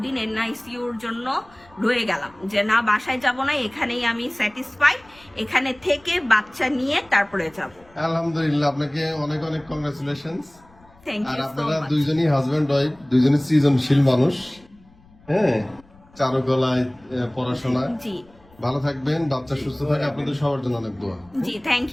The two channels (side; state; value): left; noise; rumble, 28 dB below the sound